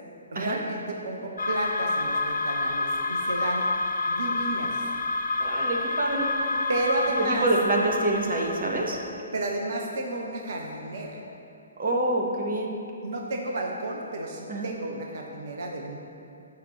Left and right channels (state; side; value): inverted; both; correlation -0.63